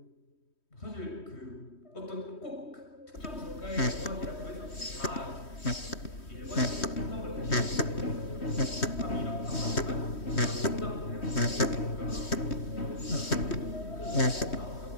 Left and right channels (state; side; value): late; right; 3.1 ms